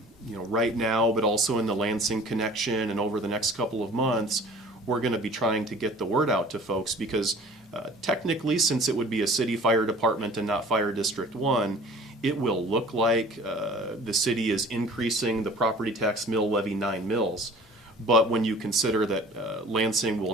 you know, right now, but also in the Lansing Connection and over the next couple of months, we're going to be trying to get the word out to folks because technically, since it would be a city fire department and not Fire District 1, it will look like the city is increasing the property tax mill levy 9 mills. But when you consider that Lansing will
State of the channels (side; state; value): both; normal; correlation 0.47